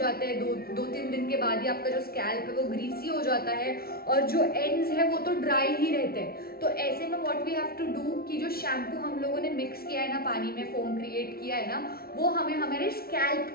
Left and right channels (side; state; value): right; late; 0.44 ms